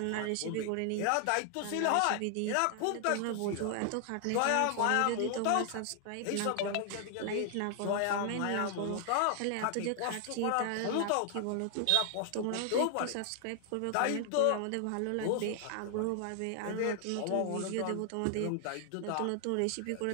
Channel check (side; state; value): both; different; correlation 0.00